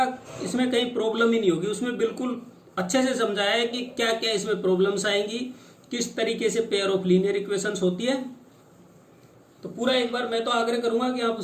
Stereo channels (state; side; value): identical; both; correlation 1.00